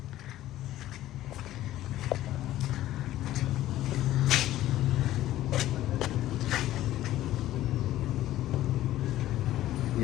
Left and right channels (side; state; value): right; quieter; 14.2 dB